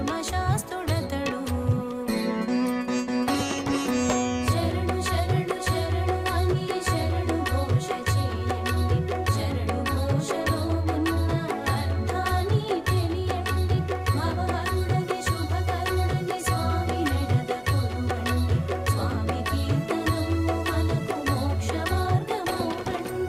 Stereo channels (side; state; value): left; noise; hum, 29 dB below the sound